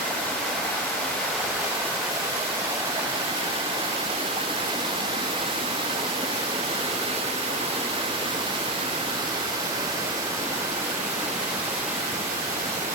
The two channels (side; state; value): both; normal; correlation 0.12